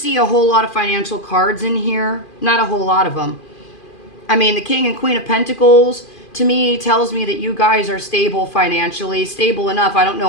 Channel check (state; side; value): late; right; 2.4 ms